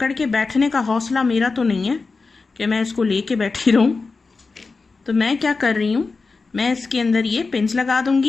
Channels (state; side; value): quieter; right; 4.2 dB